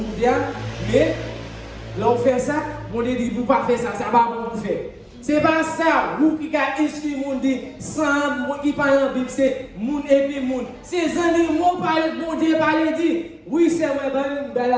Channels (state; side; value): identical; both; correlation 1.00